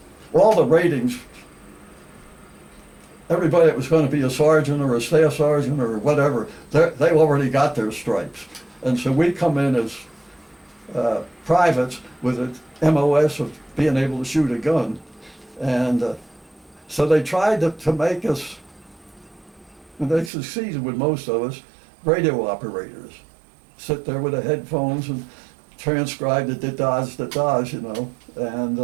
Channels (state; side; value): drops out; left; at 20.3 s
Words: all the ratings, everybody that was going to be a sergeant or a staff sergeant or whatever, they already got their stripes. And so we come in as privates with an MOS of being able to shoot a gun. And so they tried to make us, and they succeeded with most of us, radio operators. Sit there with the headphones and transcribe the da-dahs, you know.